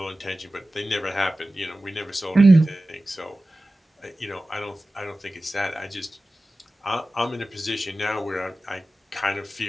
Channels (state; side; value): normal; both; correlation 0.95